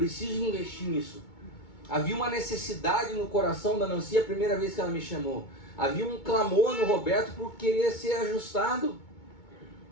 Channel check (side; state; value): right; late; 2.2 ms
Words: investir nisso. Havia uma necessidade no coração da Nancy a primeira vez que ela me chamou. Havia um clamor no Roberto por querer ser ajustado.